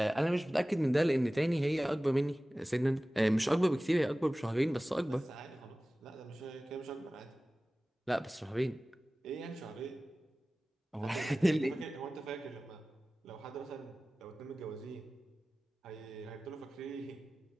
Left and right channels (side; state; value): both; normal; correlation 0.97